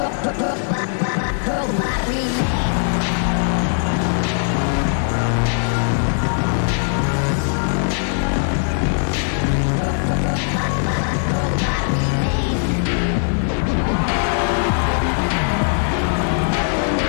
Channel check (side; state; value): right; silent; 62 dB below the other